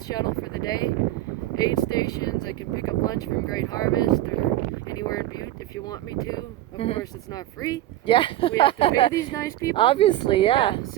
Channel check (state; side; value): quieter; left; 14.5 dB